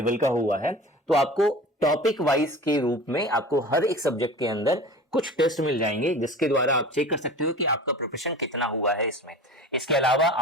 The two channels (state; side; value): normal; both; correlation 0.37